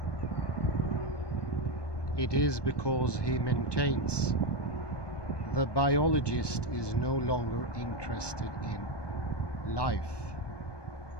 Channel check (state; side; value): late; right; 1.2 ms